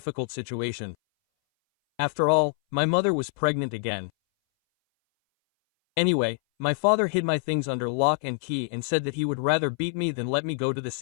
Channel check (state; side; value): silent; right; 59 dB below the other